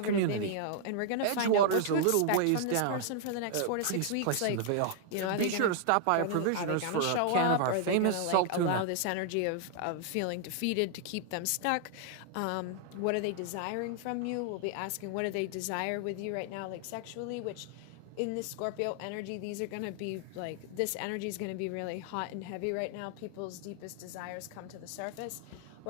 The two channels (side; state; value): both; different; correlation 0.00